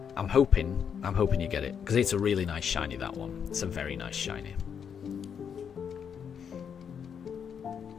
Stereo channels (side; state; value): right; quieter; 7.5 dB